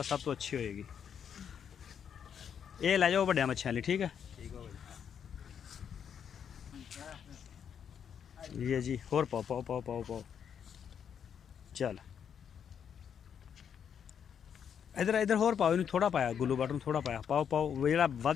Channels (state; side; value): quieter; right; 8.0 dB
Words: सब तो अच्छी होएगी। ये लै जाओ वड्डिया मच्छियां लिए, ठीक है ये जी। होर पाओ पाओ पाओ पाओ पाओ। चल इधर इधर होर पाओ, इन थोड़ा पाया गुल्लू बट थोड़ा पाया, पाओ पाओ। जो